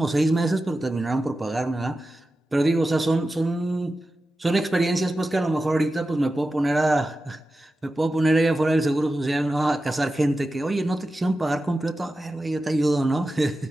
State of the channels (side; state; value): both; normal; correlation 0.93